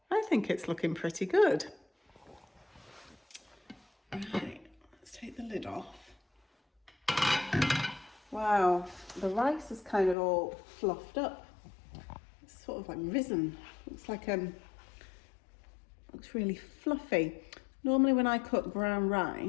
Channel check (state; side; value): drops out; right; at 10.2 s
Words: I think it's looking pretty good. Right, let's take the lid off. Wow, the rice is kind of all fluffed up. It's sort of like risen. Looks like looks really fluffy. Normally when I cook brown